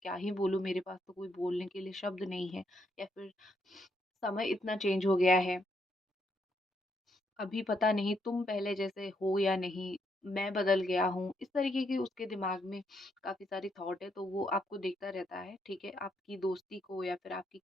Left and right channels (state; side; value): normal; both; correlation 0.76